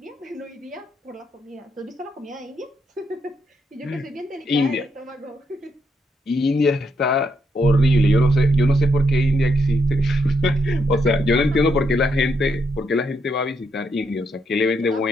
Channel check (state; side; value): normal; both; correlation 0.78